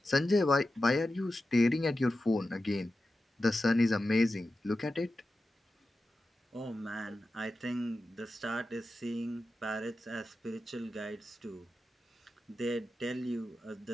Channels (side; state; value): both; normal; correlation 0.92